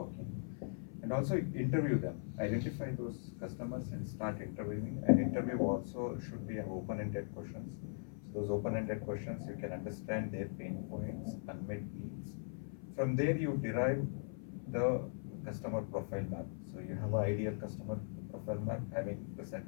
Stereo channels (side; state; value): right; silent; 51 dB below the other